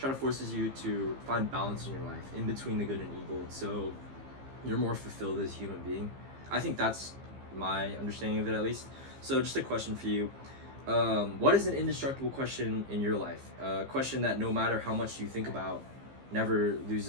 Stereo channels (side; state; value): left; late; 15 ms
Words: to forces you to find balance in your life in between the good and evil, so you're more fulfilled as a human being. I think that's my understanding of it, at least. So, just a question for you. What is an indestructible question in your life? A question that no matter how much you think about, never